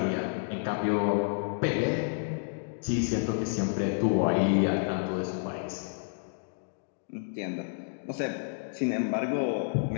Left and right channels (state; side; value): silent; right; digital silence